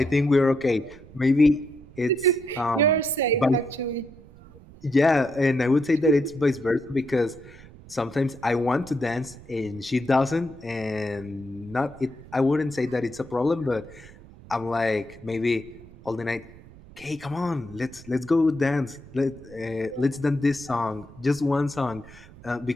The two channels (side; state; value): right; noise; rumble, 20 dB below the sound